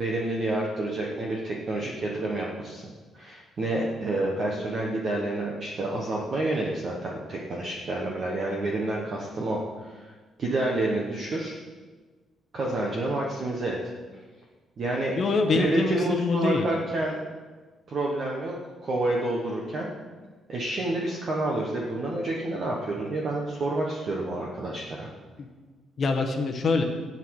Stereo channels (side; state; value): both; normal; correlation 0.75